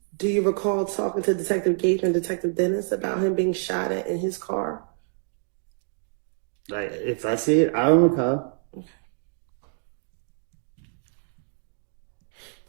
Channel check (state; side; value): silent; left; 61 dB below the other